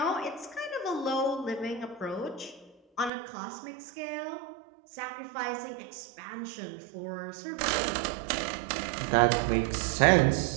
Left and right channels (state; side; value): drops out; left; at 3.1 s